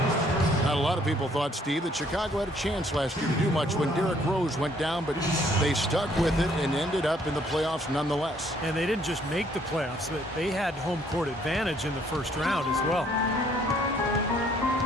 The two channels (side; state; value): both; normal; correlation 0.64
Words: Not a lot of people thought, Steve, that Chicago had a chance last year to do much when Derrick Rose went down, but they stuck with it and ended up in the playoffs nonetheless. And they didn't just make the playoffs, but they had home court advantage in the first round as well.